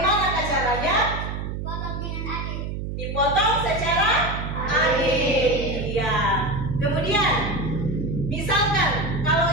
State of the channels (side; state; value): right; noise; hum, 5 dB below the sound